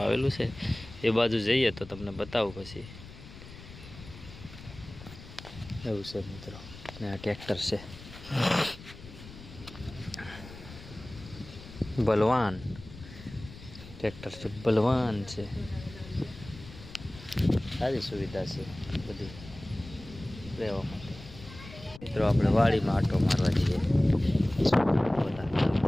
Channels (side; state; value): left; noise; rumble, 16 dB below the sound